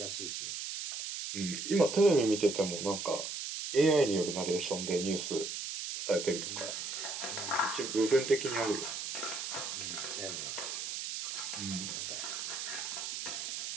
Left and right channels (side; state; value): right; noise; hiss, 5 dB below the sound